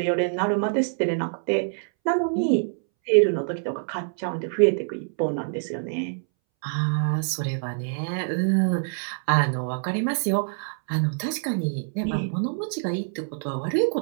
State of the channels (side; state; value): left; silent; 61 dB below the other